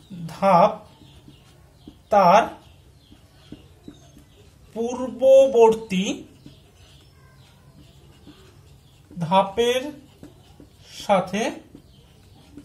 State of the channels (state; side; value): identical; both; correlation 1.00